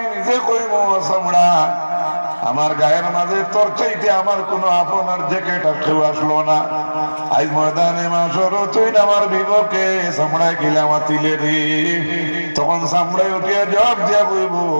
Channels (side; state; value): both; inverted; correlation -1.00